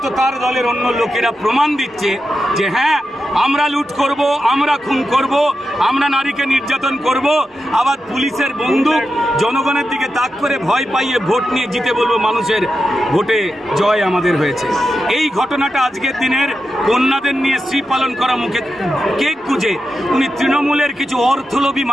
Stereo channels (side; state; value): both; normal; correlation 0.89